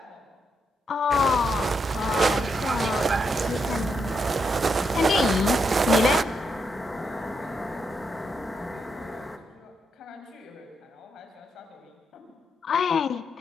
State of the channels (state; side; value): normal; both; correlation 0.81